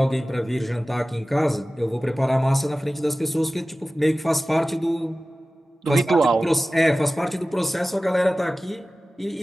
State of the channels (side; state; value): both; normal; correlation 0.96